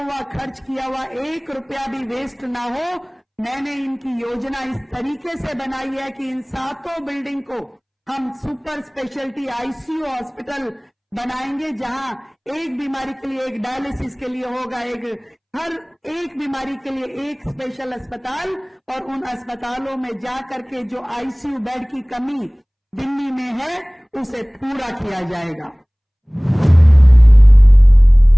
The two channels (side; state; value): both; identical; correlation 1.00